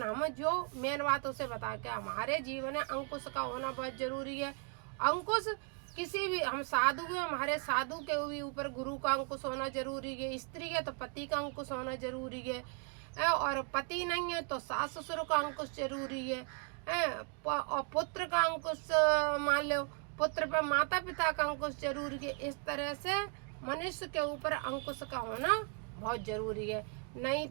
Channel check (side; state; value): left; quieter; 36.5 dB